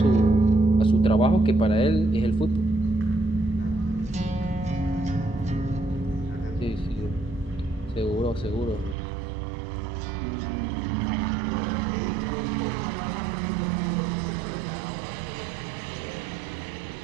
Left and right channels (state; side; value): drops out; left; at 9.0 s